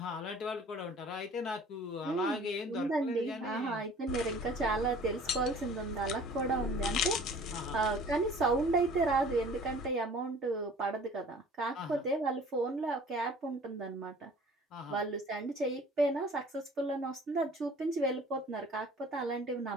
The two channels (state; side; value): normal; both; correlation 0.49